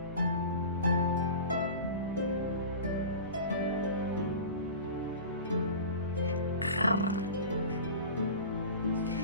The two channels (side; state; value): both; inverted; correlation -0.34